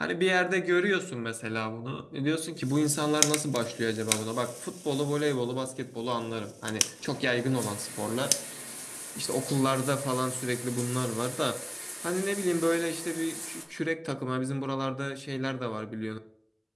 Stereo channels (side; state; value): both; identical; correlation 1.00